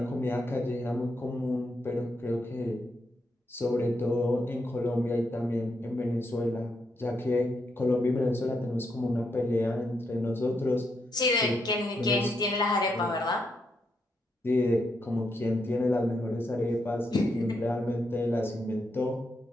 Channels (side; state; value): both; normal; correlation 0.80